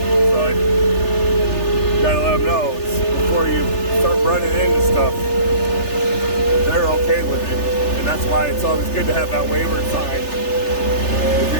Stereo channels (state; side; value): late; right; 3.3 ms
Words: So you got to let them know before you start running into stuff. They're okay with it. That's why it's always good to have that waiver sign if you're